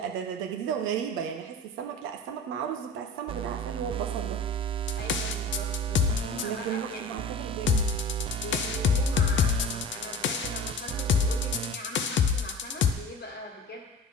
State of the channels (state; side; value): normal; both; correlation 0.36